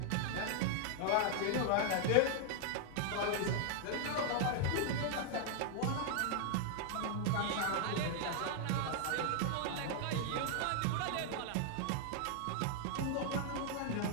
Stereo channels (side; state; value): both; different; correlation 0.00